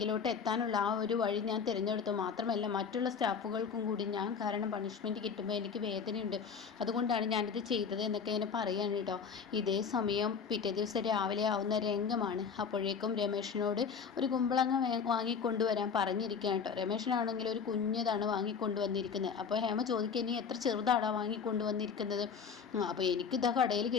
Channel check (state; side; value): quieter; right; 6.3 dB